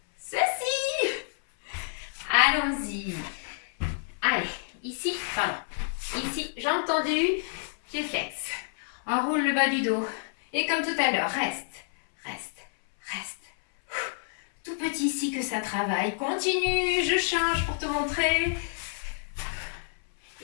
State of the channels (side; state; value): right; silent; 59 dB below the other